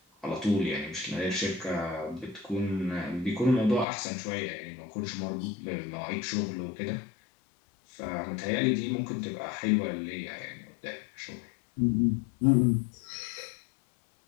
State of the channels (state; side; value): drops out; right; at 3.9 s